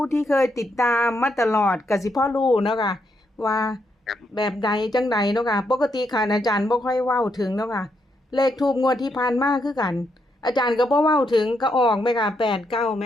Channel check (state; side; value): normal; both; correlation 0.79